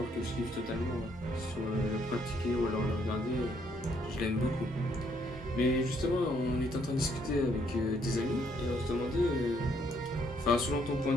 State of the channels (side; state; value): both; normal; correlation 0.69